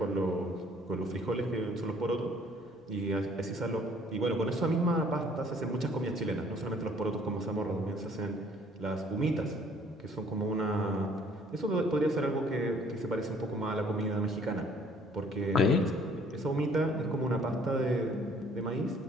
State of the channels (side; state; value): both; normal; correlation 0.58